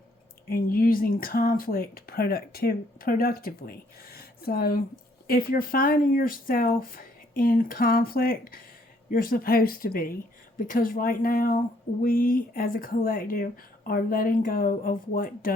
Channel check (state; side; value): normal; both; correlation 0.67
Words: and using conflict productively. So if you're finding yourself in conflict, you're supposed to be, because right now we as a collective are letting go of what